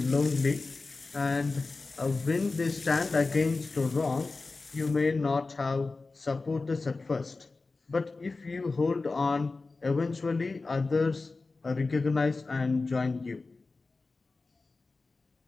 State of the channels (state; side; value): quieter; right; 3.7 dB